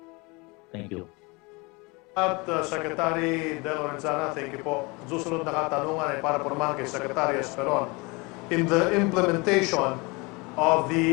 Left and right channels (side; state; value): right; quieter; 26.8 dB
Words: Thank you. At Secretary De Lorenzana, thank you po. Susunod na katanungan ay para naman kay Secretary Esperon. In the implementation of